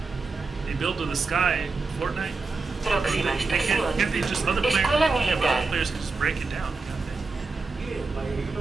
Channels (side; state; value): left; quieter; 4.0 dB